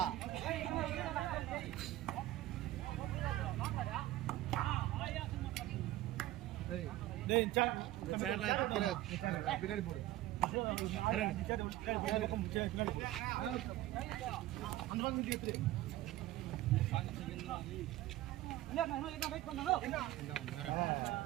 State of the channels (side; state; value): left; quieter; 15.6 dB